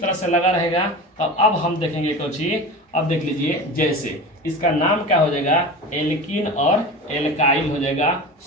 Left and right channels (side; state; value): both; normal; correlation 0.31